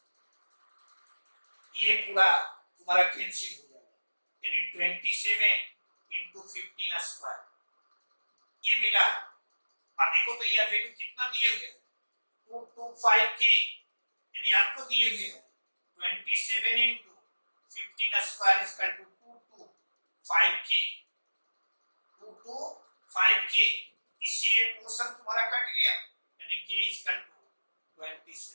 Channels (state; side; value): inverted; both; correlation -1.00